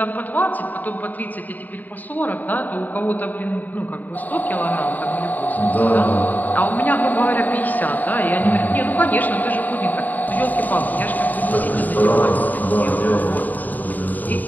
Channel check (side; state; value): right; late; 0.084 ms